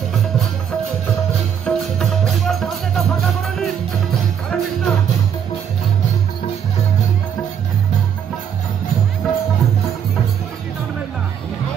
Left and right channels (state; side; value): quieter; left; 8.3 dB